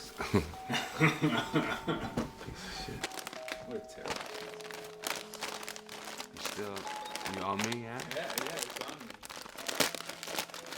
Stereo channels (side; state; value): both; identical; correlation 1.00